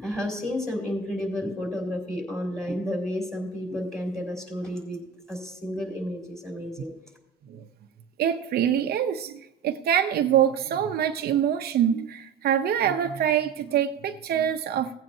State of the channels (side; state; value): left; quieter; 6.5 dB